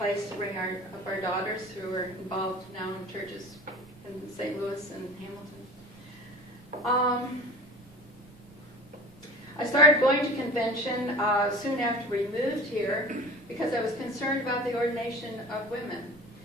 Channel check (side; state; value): right; noise; rumble, 24 dB below the sound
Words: to bring up our daughters who are involved now in churches in St. Louis and Hamilton. I started going to convention soon after we moved here because I was concerned about the ordination of women,